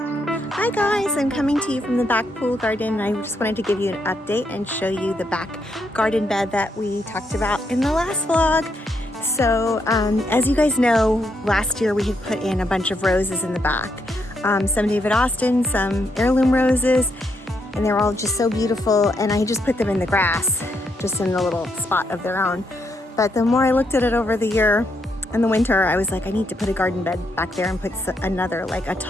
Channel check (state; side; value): normal; both; correlation 0.77